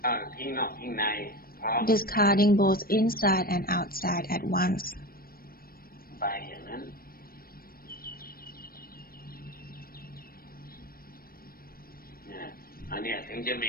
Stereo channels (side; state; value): right; late; 0.43 ms